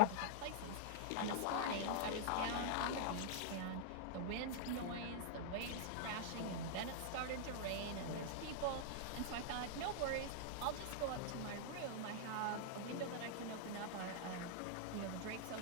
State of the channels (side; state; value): both; different; correlation -0.01